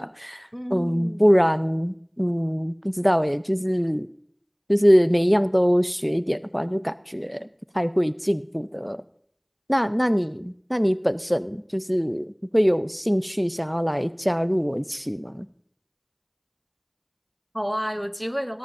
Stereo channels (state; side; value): identical; both; correlation 1.00